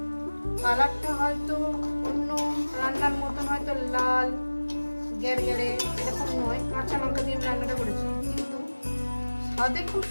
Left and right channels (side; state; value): both; inverted; correlation -1.00